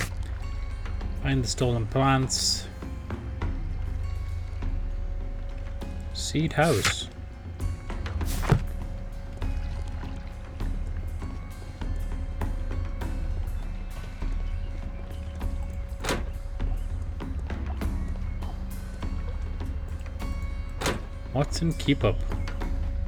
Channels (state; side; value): identical; both; correlation 1.00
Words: Find the stolen plants. Seed house. Watson, keep up.